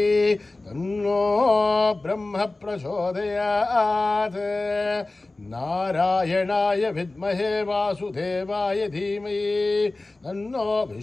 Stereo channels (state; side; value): quieter; right; 3.1 dB